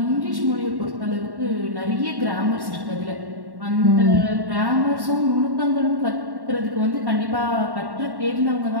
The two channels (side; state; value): left; late; 1.1 ms